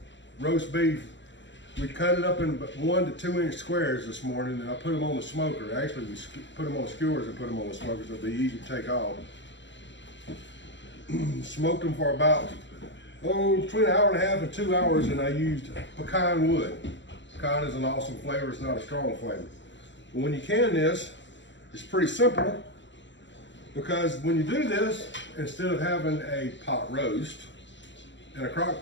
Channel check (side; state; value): right; late; 0.54 ms